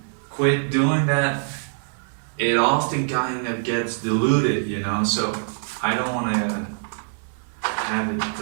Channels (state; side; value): silent; left; 60 dB below the other